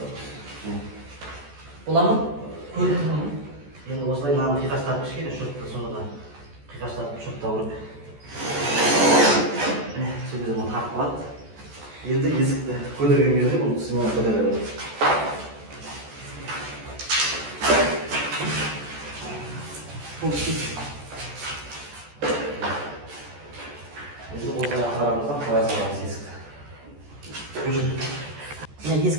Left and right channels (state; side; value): late; left; 14 ms